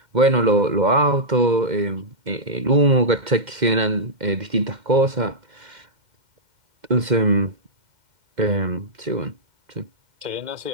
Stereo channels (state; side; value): late; left; 2.1 ms